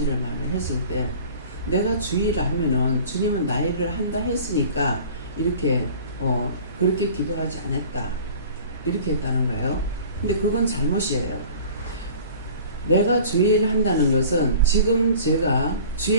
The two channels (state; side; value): inverted; both; correlation -0.44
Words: 말을 했을 때 내가 주의를 하면은 주님은 나 일을 한다 했으니까 이렇게 그렇게 기도하지 않았다 이렇게 했다는 거예요. 근데 그건 잘못이에요. 내가 주의를 한다는 것은 지금 제가